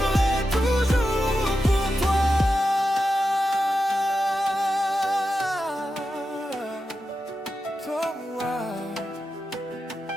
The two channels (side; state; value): both; normal; correlation 0.90